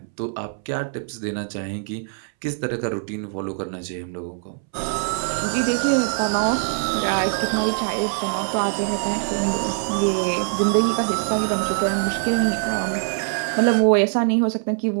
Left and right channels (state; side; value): silent; left; 63 dB below the other